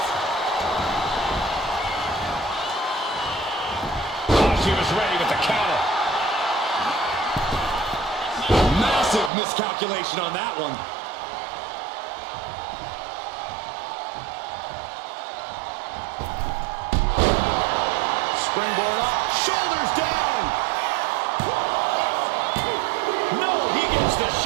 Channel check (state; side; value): drops out; left; at 9.3 s